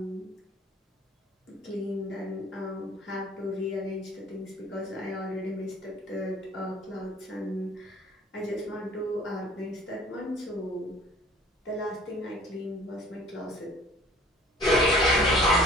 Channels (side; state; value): both; normal; correlation 0.51